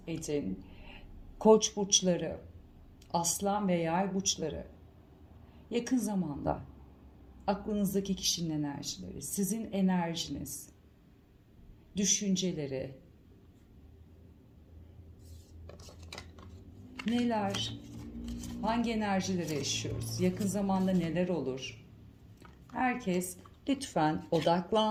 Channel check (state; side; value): identical; both; correlation 1.00